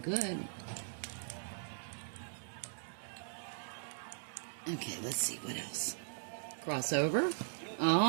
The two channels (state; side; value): silent; left; digital silence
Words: Okay, let's see what else. Crossover.